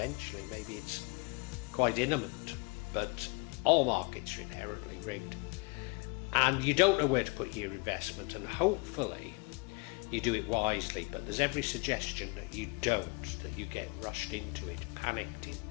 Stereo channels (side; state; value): right; quieter; 29.7 dB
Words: maybe it's quite imminent. But all markets are inherently rigged. And you don't know where to put your investment, and hopefully you do it wisely. But there's every suggestion that you don't, that you get rushed into it, panicked